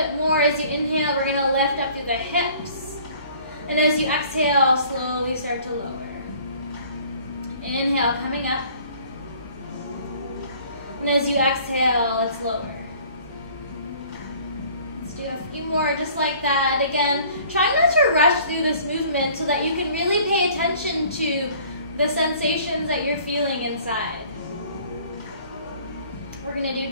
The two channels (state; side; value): inverted; both; correlation -0.53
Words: more. As you inhale, we're going to lift up through the hips. And as you exhale, slowly start to lower. Inhale, coming up. And as you exhale, it's lower. Let's do a few more just like that. Again, try not to rush through this movement so that you can really pay attention to the sensations that you're feeling inside. We're going to do